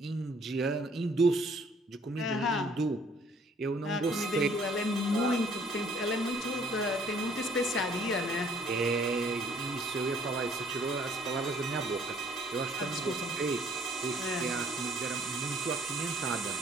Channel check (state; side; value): normal; both; correlation 0.59